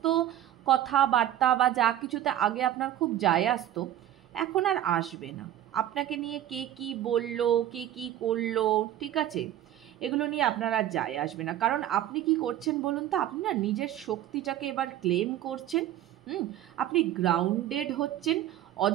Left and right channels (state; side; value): quieter; left; 12.2 dB